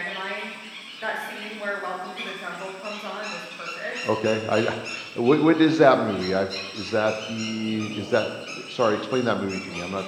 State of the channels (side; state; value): both; identical; correlation 1.00